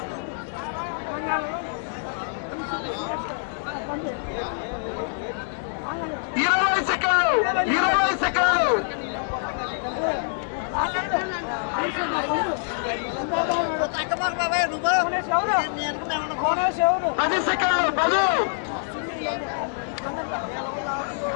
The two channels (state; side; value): silent; right; digital silence